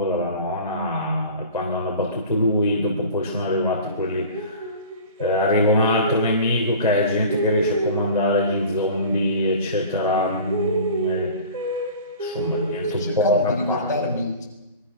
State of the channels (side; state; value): both; inverted; correlation -0.41